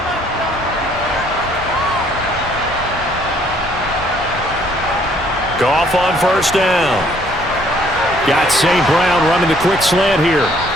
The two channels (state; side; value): normal; both; correlation 0.63